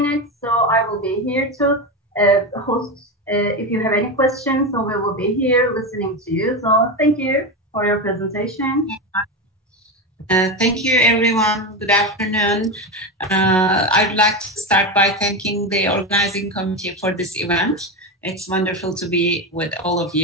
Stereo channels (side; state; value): both; normal; correlation 0.16